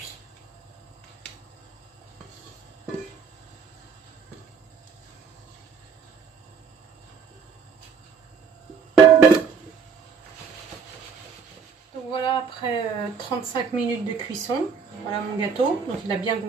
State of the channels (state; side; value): quieter; left; 5.9 dB